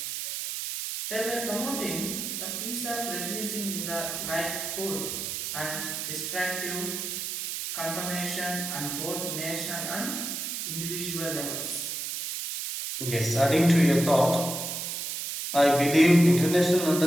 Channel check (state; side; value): noise; right; hiss, 4 dB below the sound